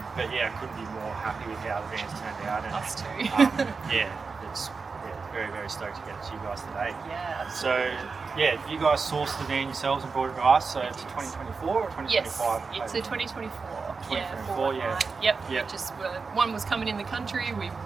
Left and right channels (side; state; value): left; quieter; 4.7 dB